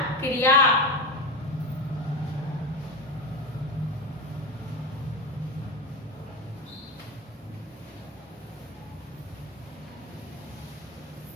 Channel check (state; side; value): normal; both; correlation 0.21